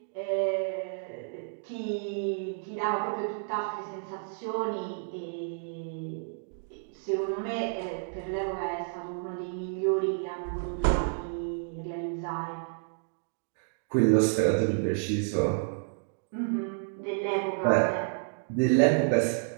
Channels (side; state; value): left; silent; digital silence